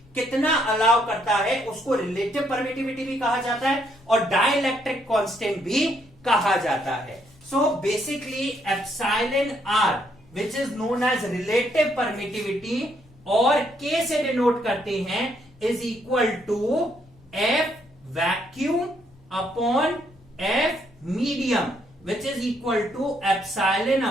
कितना अलाउ करता है उसको रिलेटिव परमिटिविटी भी कहा जाता है और डाइलेक्ट्रिक कांस्टेंट भी कहा जाता है. So basically epsilon R which is known as relative permittivity और K से डिनोट करते हैं is equal to F vacuum upon F medium which is equal to epsilon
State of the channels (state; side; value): noise; left; rumble, 27 dB below the sound